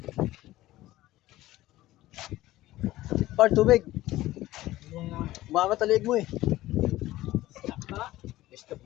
Par, tubig. Umangat ang liig mo eh. Stop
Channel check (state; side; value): quieter; right; 16.2 dB